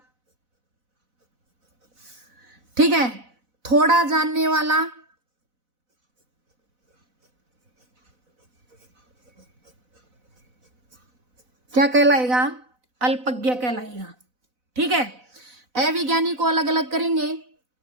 ठीक है, थोड़ा जानने वाला क्या कहलाएगा? अल्पज्ञ कहलाएगा। ठीक है, अविज्ञानी को अलग अलग करेंगे,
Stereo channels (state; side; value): late; left; 4.0 ms